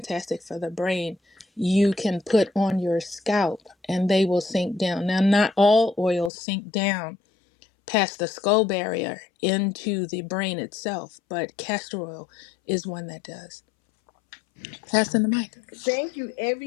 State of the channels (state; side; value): drops out; right; at 6.3 s